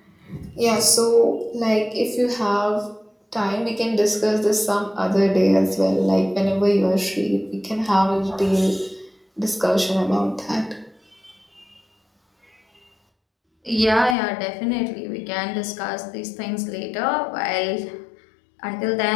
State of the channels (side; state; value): right; drops out; at 14.2 s